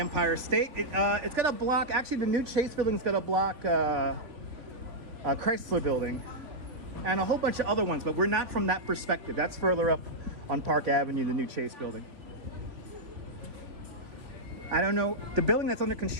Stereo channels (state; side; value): late; left; 3.6 ms